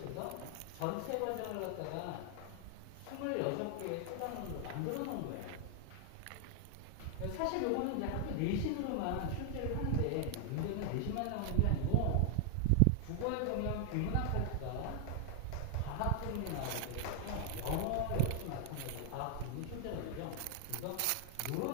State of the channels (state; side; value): different; both; correlation 0.00